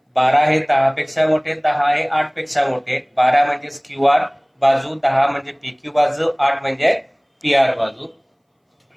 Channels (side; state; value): both; identical; correlation 1.00